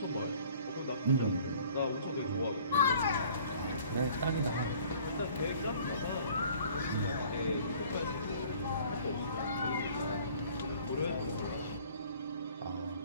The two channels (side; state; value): both; inverted; correlation -0.53